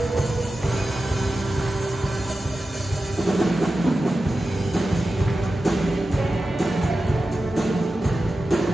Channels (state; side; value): normal; both; correlation 0.92